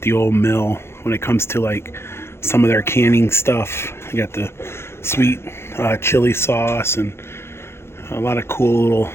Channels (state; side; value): late; right; 0.12 ms